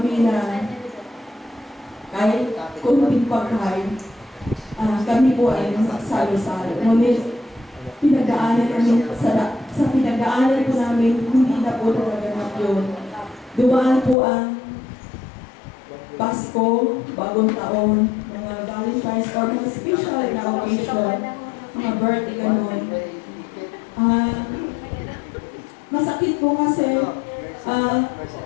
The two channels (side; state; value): right; drops out; at 14.2 s